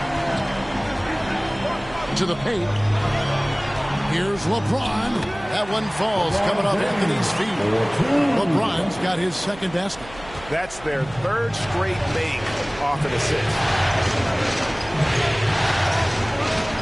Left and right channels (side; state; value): right; noise; hum, 18 dB below the sound